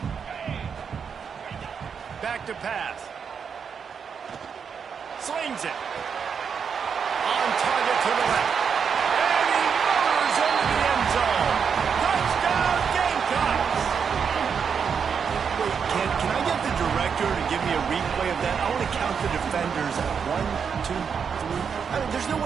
Back to pass. Slings it. On target to the left. And he motors into the end zone. Touchdown, Gamecocks! Wait, can I get the director to give me a replay of that? I want to count the defenders at 1, 2, 3. I mean, there's no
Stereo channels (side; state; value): left; quieter; 6.6 dB